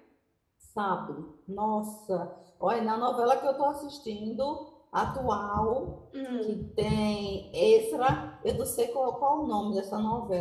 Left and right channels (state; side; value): identical; both; correlation 1.00